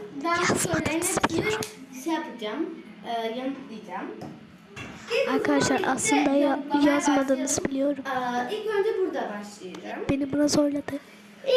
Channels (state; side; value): identical; both; correlation 1.00